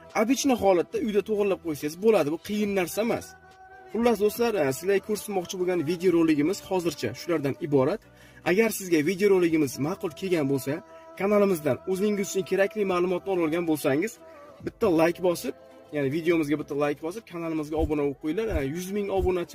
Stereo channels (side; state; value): both; identical; correlation 1.00